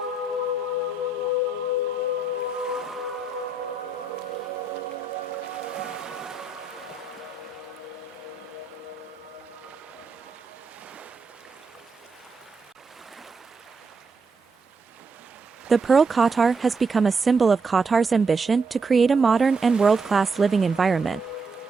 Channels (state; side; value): quieter; left; 3.6 dB